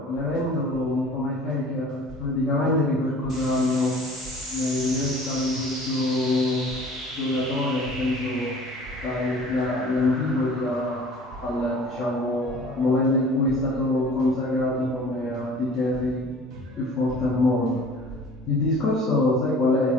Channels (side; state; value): both; normal; correlation 0.47